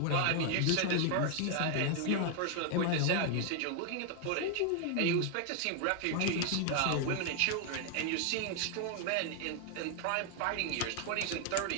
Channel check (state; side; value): different; both; correlation 0.00